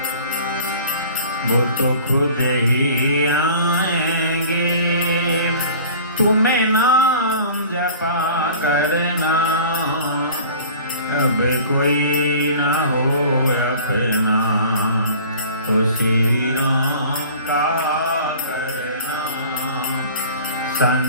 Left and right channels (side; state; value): both; inverted; correlation -0.44